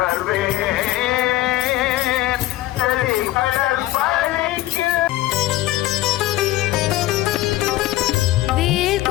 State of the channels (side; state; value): right; quieter; 16.1 dB